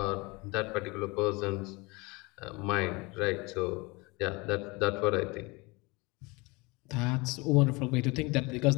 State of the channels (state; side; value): quieter; right; 26.0 dB